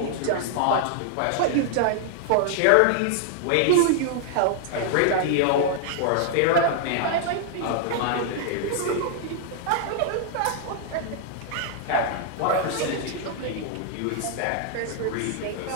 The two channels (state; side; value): different; both; correlation -0.01